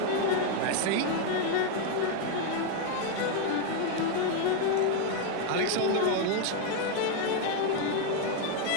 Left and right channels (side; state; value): both; different; correlation 0.01